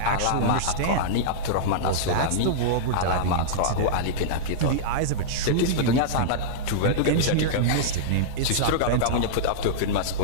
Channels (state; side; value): different; both; correlation -0.05